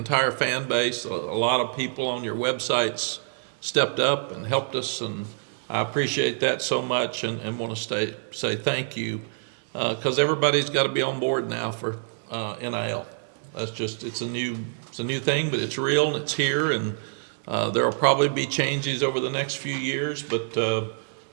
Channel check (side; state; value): left; silent; digital silence